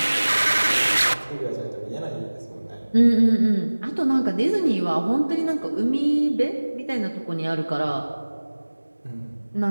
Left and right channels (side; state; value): both; inverted; correlation -1.00